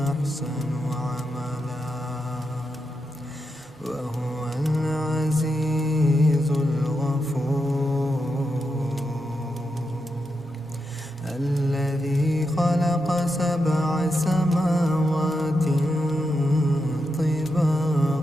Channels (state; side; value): normal; both; correlation 0.86